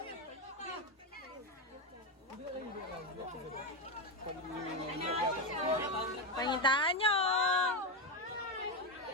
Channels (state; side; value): normal; both; correlation 0.11